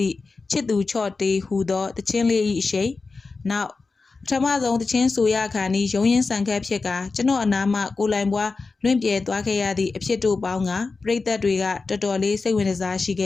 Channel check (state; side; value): quieter; right; 4.1 dB